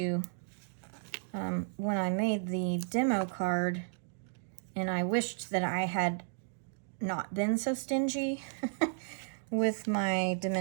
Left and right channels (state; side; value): silent; left; digital silence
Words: when I made the demo card, and I wished that I had not been so stingy with my